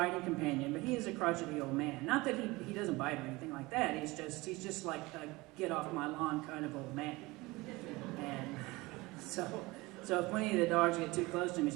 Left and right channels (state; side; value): quieter; left; 22.0 dB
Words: companion, but he is a crotchety old man. Not that he doesn't bite or anything like that, he's just like a get off my lawn kind of old man. And so if any of the dogs get too close to him, he's